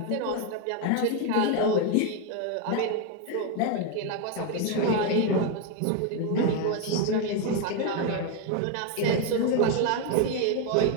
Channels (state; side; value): different; both; correlation 0.02